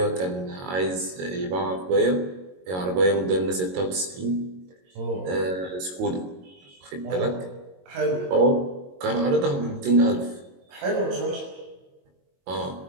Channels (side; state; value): left; late; 22 ms